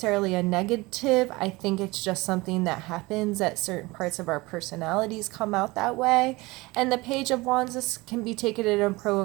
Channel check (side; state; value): left; quieter; 22.3 dB